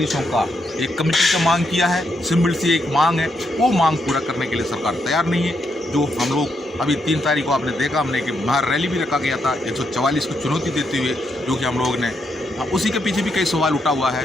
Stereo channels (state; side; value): normal; both; correlation 0.79